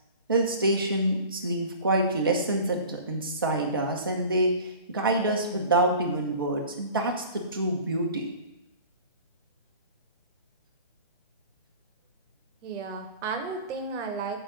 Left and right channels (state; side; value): inverted; both; correlation -0.41